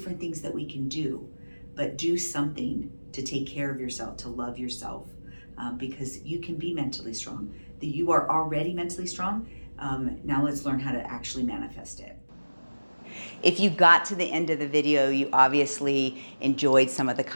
things that we can do, but do something to take care of yourself, to love yourself, because you can be mentally strong. You are already mentally strong. Now let's learn how to actually manifest it. If you got to the end of the video, you obviously enjoyed some of the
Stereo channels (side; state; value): both; inverted; correlation -1.00